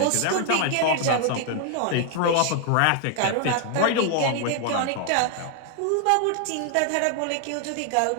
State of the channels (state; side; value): different; both; correlation 0.00